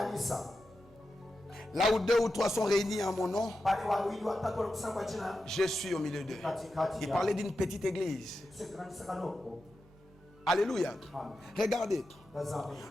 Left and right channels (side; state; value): both; normal; correlation 0.90